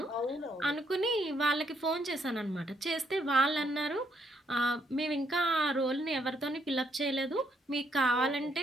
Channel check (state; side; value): normal; both; correlation 0.72